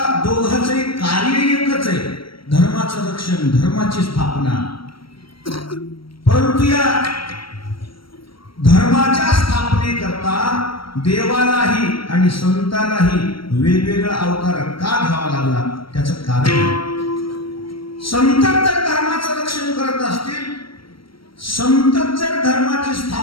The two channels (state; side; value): late; right; 0.74 ms